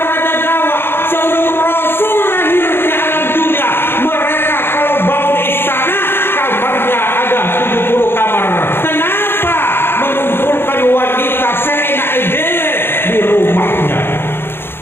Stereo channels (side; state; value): right; late; 0.11 ms